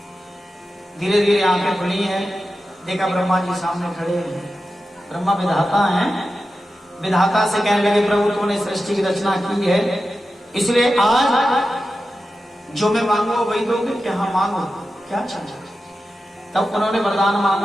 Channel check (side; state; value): both; normal; correlation 0.92